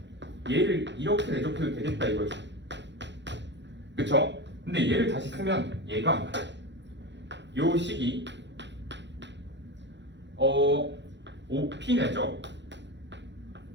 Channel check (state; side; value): late; left; 0.52 ms